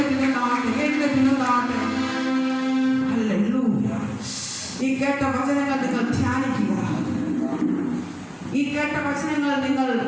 ഹല്ലേലൂയ. ഈ കേട്ട വചനങ്ങൾ നിങ്ങൾ ധ്യാനിക്കുക. ഈ കേട്ട വചനങ്ങൾ നിങ്ങൾ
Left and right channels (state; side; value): identical; both; correlation 1.00